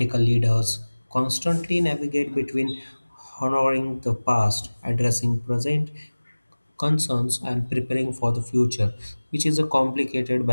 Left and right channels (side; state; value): both; inverted; correlation -1.00